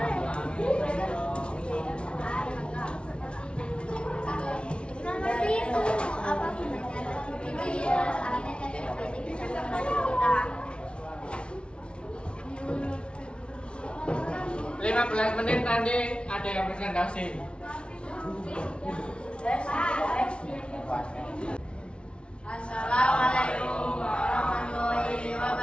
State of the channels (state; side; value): late; right; 0.058 ms